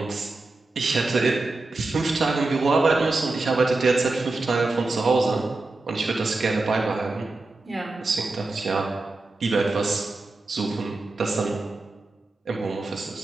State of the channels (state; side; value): quieter; left; 3.2 dB